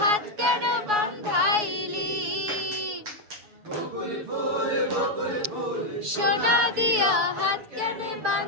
হাত কেন বাঁধাইলি সোনা দিয়া হাত কেন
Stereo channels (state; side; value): late; left; 7.1 ms